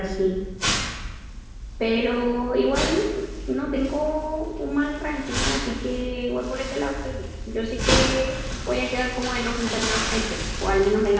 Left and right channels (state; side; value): identical; both; correlation 1.00